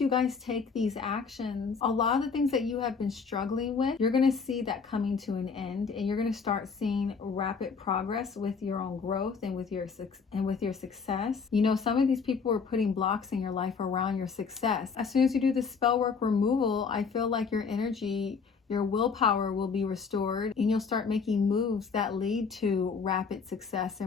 guys take these actions, a lot of the things that you have been struggling with, you're going to see that coming to an end, and you're going to start seeing rapid progress with your own growth and with your success. Some of these people are putting blocks in your life around your success. As soon as you do the spell work removal, I feel like your energy, your willpower will be restored, and you'll start making moves that lead to rapid success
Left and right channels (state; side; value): quieter; right; 5.4 dB